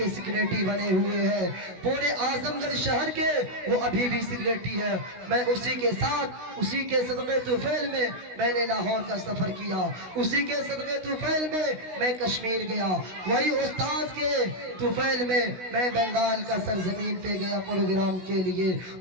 सेक्रेटरी बने हुए हैं, पूरे आजमगढ़ शहर के वो अभी भी सेक्रेटरी है। मैं उसी के साथ, उसी के सदक़े तुफैल में मैंने लाहौर का सफर किया, उसी के सदक़े तुफैल में मैं कश्मीर गया, वही उस्ताद के तुफैल में मैं बंगाल का सरजमीन पे गया प्रोग्राम के लिए,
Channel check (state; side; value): late; left; 16 ms